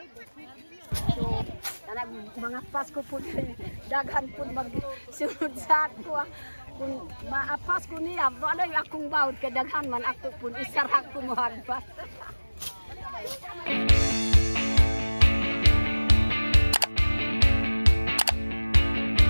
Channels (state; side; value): inverted; both; correlation -1.00